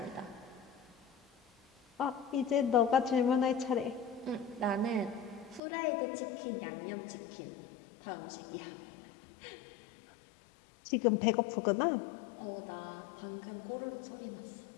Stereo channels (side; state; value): right; drops out; at 5.6 s